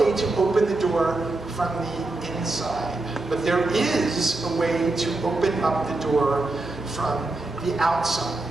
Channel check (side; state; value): left; quieter; 3.0 dB